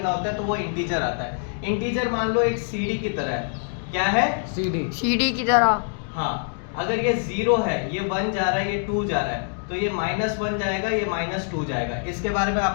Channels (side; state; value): right; silent; 60 dB below the other